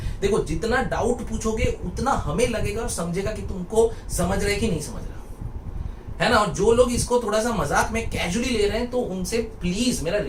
देखो जितना डाउट पूछोगे उतना हमें लगेगा और समझेगा कि तुमको समझ रहे कि नहीं समझ रहा, है ना? और जो लोग इसको थोड़ा सा मजाक में कैजुअली ले रहे हैं, तो उनसे प्लीज मेरा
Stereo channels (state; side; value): identical; both; correlation 1.00